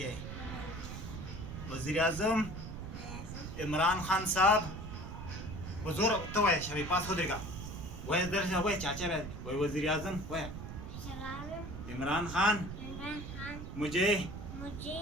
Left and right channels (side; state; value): right; noise; rumble, 8 dB below the sound